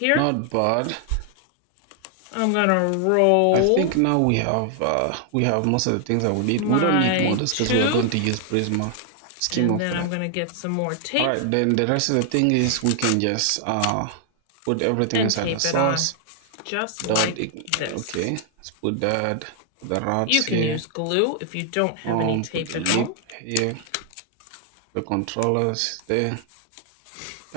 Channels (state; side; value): different; both; correlation 0.00